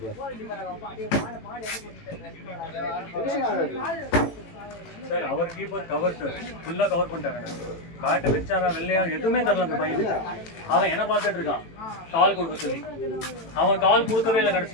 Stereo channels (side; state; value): right; late; 18 ms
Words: சார் அவர் கீப்பர் கவர் சார் ஃபுல்லாக கவர் பண்ணிட்டாங்க. பேட்டை வச்சாரா வெள்ளையா எதுவுமே தரல அந்த பையனுக்கு. அவன் என்ன பார்த்துட்டு இருக்கான் கால் கொடுக்க சொல்லி. அவன் கால் கொடுக்கவே இல்லை